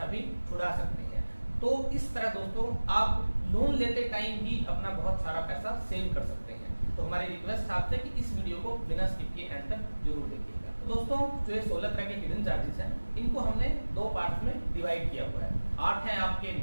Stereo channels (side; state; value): both; inverted; correlation -1.00